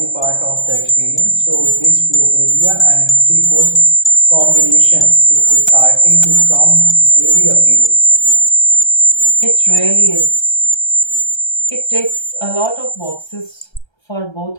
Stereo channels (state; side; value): late; right; 1.3 ms